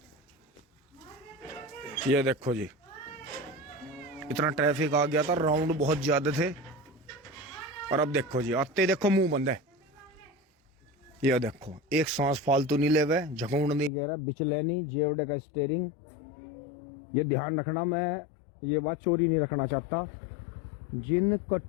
ये देखो जी, इतना ट्रैफिक आ गया था, राउंड बहुत ज्यादा थे। और अब देखो जी, आते देखो मुंह बंद है। ये देखो एक सांस फालतू नहीं ले हुए, झकूंड नहीं कह रहा, बिचले नहीं, जेवड़े का स्टेयरिंग। ये ध्यान रखना, मैं ये बात चोरी नहीं रखना चाहता। जिन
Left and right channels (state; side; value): drops out; right; at 13.9 s